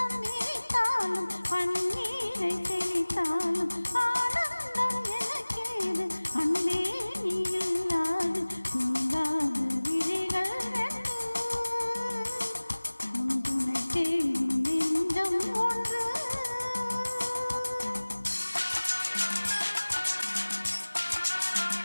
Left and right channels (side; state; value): both; inverted; correlation -1.00